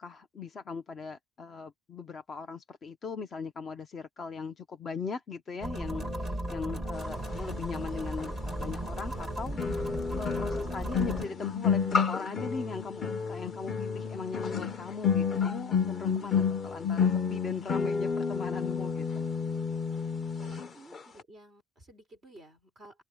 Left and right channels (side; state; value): right; quieter; 4.8 dB